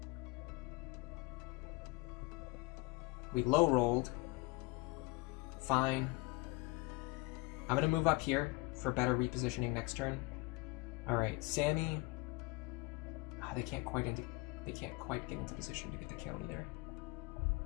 We low rolled. Fine. I'm going to move up here for better repositioning next turn. Alright, Sammy. Oh, they can't quite get into position to get the kill either.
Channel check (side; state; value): right; quieter; 25.4 dB